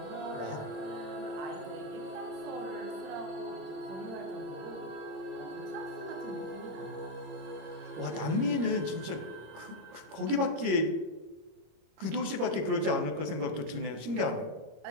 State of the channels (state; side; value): late; left; 26 ms